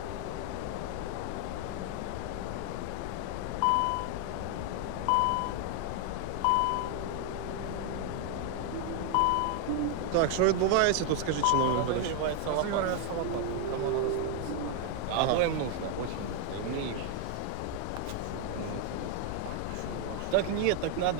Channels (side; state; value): both; different; correlation 0.00